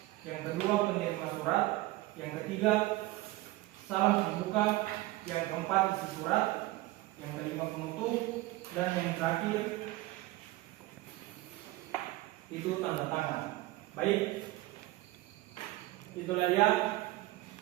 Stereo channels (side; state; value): left; quieter; 18.8 dB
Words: yang kedua penerima surat, yang ketiga salam pembuka, yang keempat isi surat, yang kelima penutup, dan yang terakhir itu tanda tangan. Baik, itulah ya